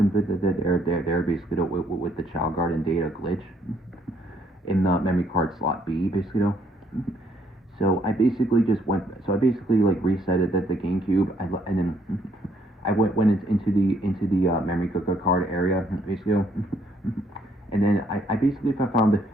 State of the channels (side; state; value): both; normal; correlation 0.68